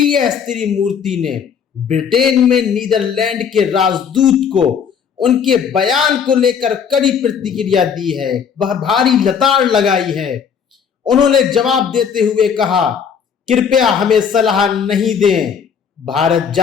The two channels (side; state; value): right; quieter; 7.1 dB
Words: त्रिमूर्ति ने ब्रिटेन में नीदरलैंड के राजदूत को उनके बयान को लेकर कड़ी प्रतिक्रिया दी है, वह भारी लताड़ लगाई है। उन्होंने जवाब देते हुए कहा, कृपया हमें सलाह नहीं दें, भारत